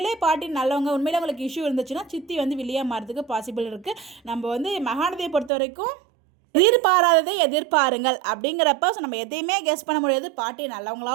பாட்டி நல்லவங்க, உண்மையிலே அவங்களுக்கு இஷ்யூ இருந்துச்சுன்னா சித்தி வில்லியாக மாறதுக்கு பாசிபிள் இருக்குது. நம்ம மகாநதியை பொறுத்த வரைக்கும் எதிர்பாராததை எதிர்பாருங்கள் அப்படிங்கிறப்ப ஸோ நம்ம எதையுமே கெஸ் பண்ண முடியாது. பாட்டி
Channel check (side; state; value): left; drops out; at 5.5 s